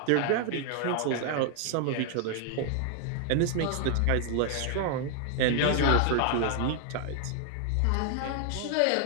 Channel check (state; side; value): different; both; correlation 0.00